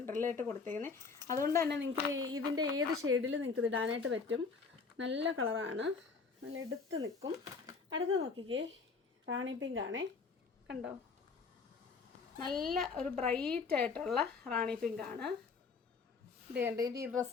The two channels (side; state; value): right; quieter; 4.8 dB